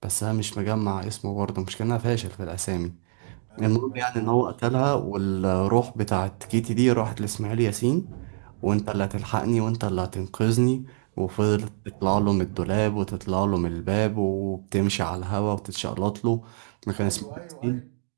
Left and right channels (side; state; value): left; silent; digital silence